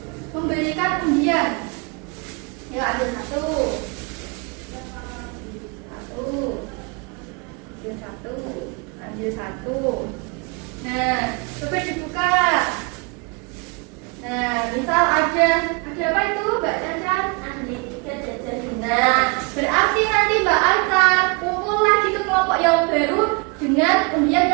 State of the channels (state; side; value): quieter; left; 32.1 dB